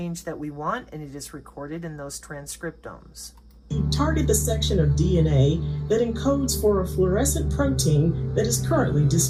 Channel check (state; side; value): identical; both; correlation 1.00